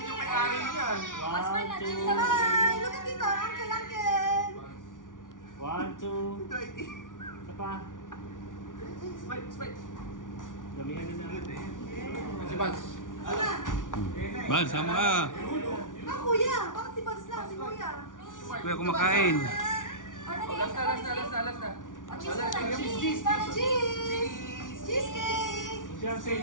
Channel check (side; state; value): right; late; 0.88 ms